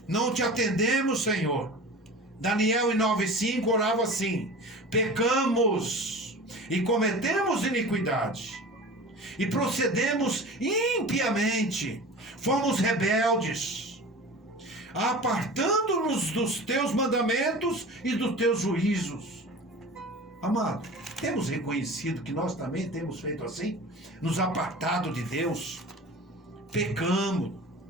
Não te atendemos, Senhor. Daniel em 9:5 orava assim: pecamos e cometemos iniquidade, e procedemos impiamente, fomos rebeldes, apartando-nos dos teus mandamentos e dos teus juízos. Amado, temos reconhecido que nós também temos feito assim, nos apartado de Deus, pecamos,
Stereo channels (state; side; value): normal; both; correlation 0.36